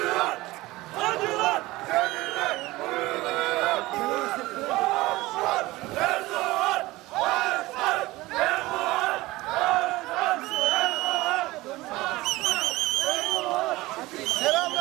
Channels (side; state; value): left; quieter; 19.5 dB